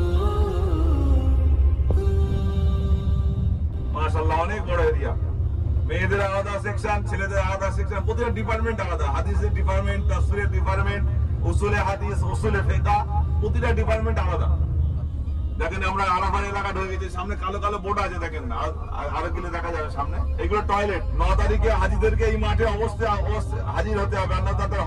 মাশাআল্লাহ, অনেক বড় এরিয়া। মেয়েদের আলাদা সেকশন, ছেলেদের আলাদা সেকশন, প্রতিটা ডিপার্টমেন্ট আলাদা। হাদিসের ডিপার্টমেন্ট, তাফসীরের ডিপার্টমেন্ট, উসুলে হাদিস, উসুলে ফিকহ, প্রতিটা ডিপার্টমেন্ট আলাদা। দেখেন আমরা আরাফার এলাকা ঢুকে গেছি, সামনে কালো কালো বোর্ড আছে দেখেন, আরো গেলে দেখা যাবে সামনে। এগুলো টয়লেট। 9 তারিখে হাজিদেরকে এই মাঠে অবশ্যই হাজির হতে হবে, আর তাদের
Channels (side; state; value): both; identical; correlation 1.00